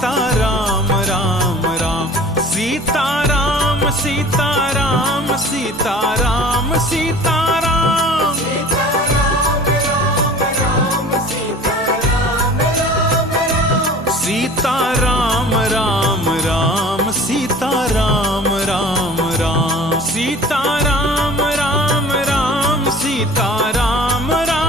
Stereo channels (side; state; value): both; normal; correlation 0.44